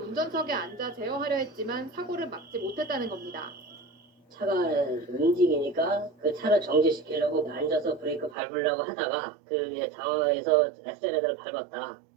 앉아 제어하려 했지만 사고를 막지 못했다는 겁니다. 차가 움직이니까 그 차를 정지시키려고 앉아서 브레이크 밟으려고 하다가 그 당황해서 엑셀레터를 밟았다.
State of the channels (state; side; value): drops out; left; at 8.3 s